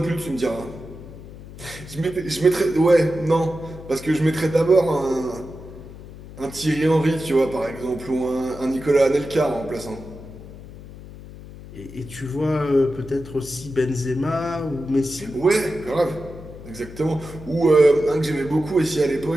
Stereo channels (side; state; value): left; noise; hum, 15 dB below the sound